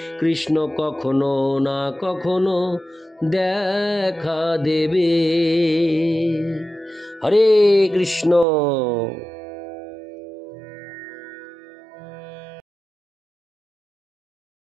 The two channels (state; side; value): drops out; left; at 8.5 s